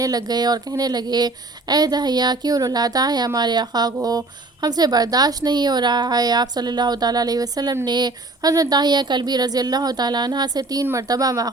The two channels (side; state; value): left; quieter; 3.1 dB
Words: لگ گئے اور کہنے لگے، اے داہیہ کیوں رلاتا ہے ہمارے آقا کو، ہم سے برداشت نہیں ہو رہا ہے۔ آپ صلی اللہ تعالیٰ علیہ وسلم نے حضرت داہیہ کلبی رضی اللہ تعالیٰ عنہ سے 3 مرتبہ